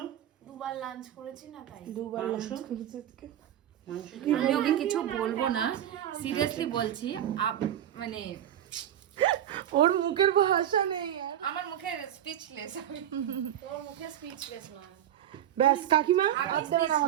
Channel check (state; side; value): quieter; left; 10.9 dB